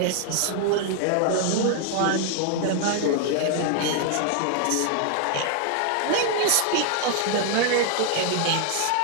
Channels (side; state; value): both; different; correlation 0.00